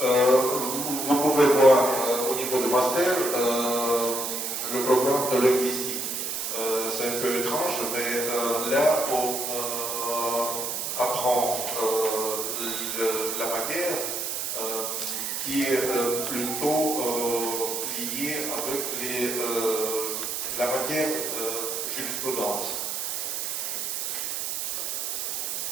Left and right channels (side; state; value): right; noise; hiss, 2 dB below the sound